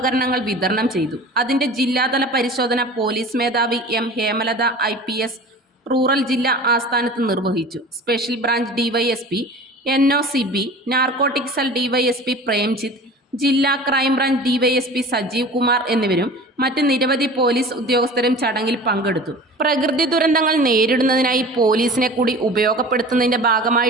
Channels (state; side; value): normal; both; correlation 0.40